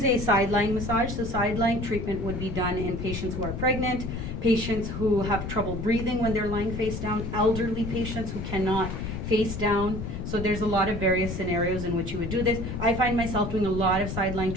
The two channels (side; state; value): left; noise; rumble, 5 dB below the sound